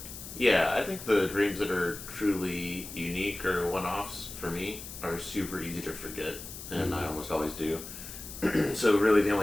Yeah, I think the dreams that are truly unique or one-offs for me are super easy to forget, and I almost always do. So really the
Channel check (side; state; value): left; noise; hiss, 12 dB below the sound